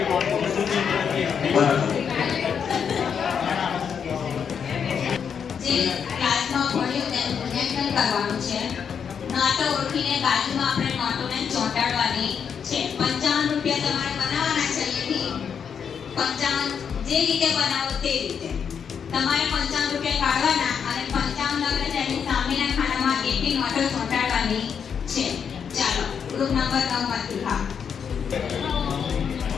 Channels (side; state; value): right; quieter; 7.2 dB